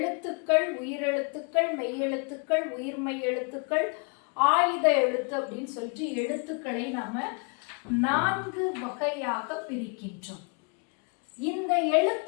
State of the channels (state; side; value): quieter; right; 36.8 dB